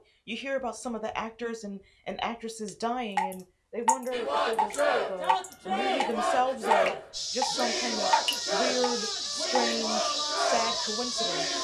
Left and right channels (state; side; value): identical; both; correlation 1.00